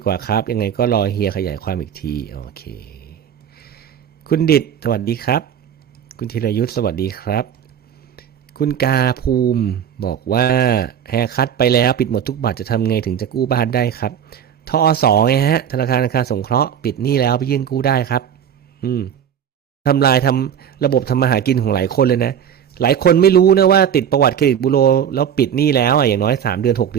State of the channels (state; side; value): quieter; left; 8.8 dB